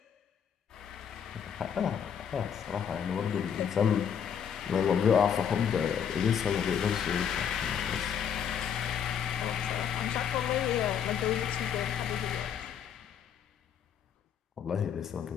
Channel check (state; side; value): quieter; right; 8.0 dB